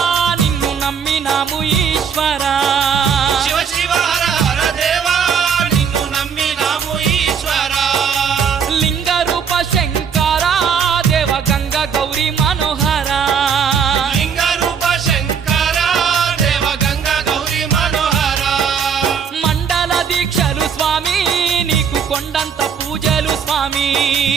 నిన్ను నమ్మినాము ఈశ్వరా శివ శివ హర హర దేవా నిన్ను నమ్మినాము ఈశ్వరా లింగ రూప శంకరా దేవ గంగ గౌరీ మనోహరా లింగ రూప శంకరా దేవ గంగ గౌరీ మనోహరా మండల దీక్షలు స్వామి నీకు కొండంత పూజలు స్వామి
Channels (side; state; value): left; quieter; 7.0 dB